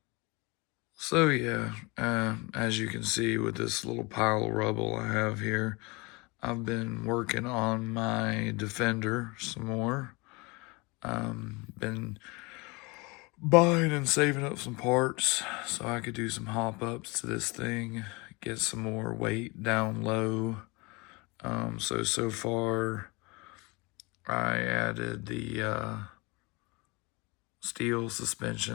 So yeah, as you can see with this little pile of rubble I have here, I've been working on my Defender some more. Been buying and saving up some parts so I could do some hop ups to this thing, get some more weight down low. So far I added the steel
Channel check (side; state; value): right; quieter; 26.7 dB